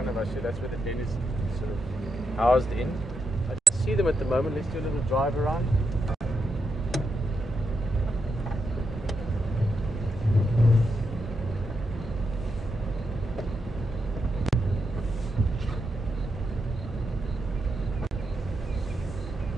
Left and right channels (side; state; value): both; normal; correlation 0.83